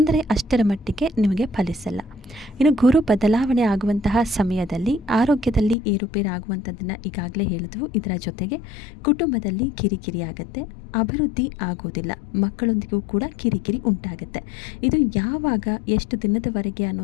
ಅಷ್ಟರ ಮಟ್ಟಿಗೆ ನಿಮಗೆ ಫಲಿಸಲ್ಲ. ಇನ್ನು ಗುರು ಬದಲಾವಣೆ ಆಗುವಂತಹ ಸಮಯದಲ್ಲಿ ಆರೋಗ್ಯದಲ್ಲಿ ಏರುಪೇರಾಗುವಂಥದ್ದನ್ನು ಈಗಾಗಲೇ ಹೇಳಿದ್ವು. ಇದರ ಜೊತೆಗೆ ಕುಟುಂಬದಲ್ಲಿ ಕಿರಿಕಿರಿ ಆಗುತ್ತೆ, ಅಭಿವೃದ್ಧಿ ಆಗೋದಿಲ್ಲ, ಮಕ್ಕಳೊಂದಿಗೂ ಕೂಡ ಕಿರಿಕಿರಿ ಉಂಟಾಗುತ್ತೆ. ಇದು ಯಾವಾಗ, ಎಷ್ಟು ದಿನದವರೆಗೆ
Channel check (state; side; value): drops out; right; at 5.8 s